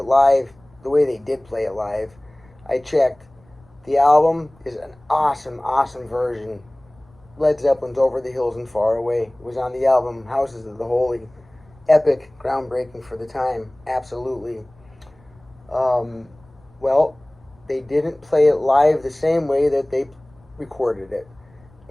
live, the way they did play it live. I checked. The album is an awesome, awesome version. Led Zeppelin's Over the Hills and Far Away. It was on the album Houses of the Holy. Epic, groundbreaking for the time. Absolutely. Well, they didn't play it live the same way that they recorded it.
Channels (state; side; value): noise; left; rumble, 29 dB below the sound